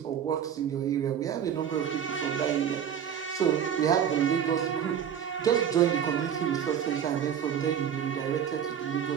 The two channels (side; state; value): left; quieter; 8.6 dB